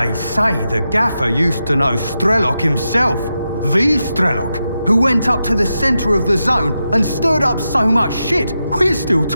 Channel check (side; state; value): both; inverted; correlation -0.88